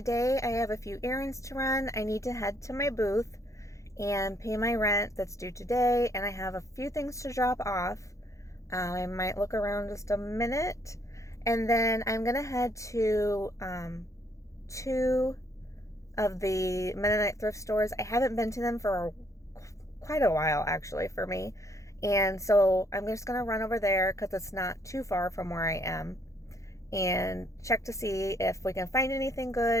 I have a few errands to run. I need to head to my booth and pay my rent that's due today, and I have a few things to drop off. I might look around just a minute, and then I'm gonna head to two of the Mennonite thrift stores. I haven't been to them for quite a while actually for me, and so I'm just gonna run over there because it's not too far from where I am and check to see if we can find anything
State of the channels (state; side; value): late; right; 0.15 ms